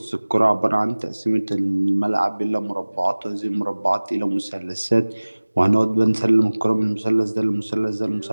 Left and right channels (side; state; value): both; inverted; correlation -1.00